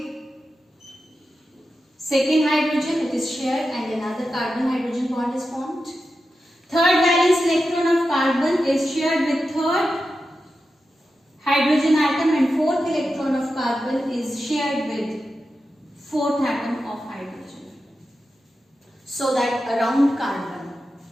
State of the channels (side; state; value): both; normal; correlation 0.90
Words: second hydrogen, it is shared, and another carbon-hydrogen bond is formed. Third valence electron of carbon is shared with third hydrogen atom, and fourth electron of carbon is shared with fourth atom of hydrogen. So that around carbon,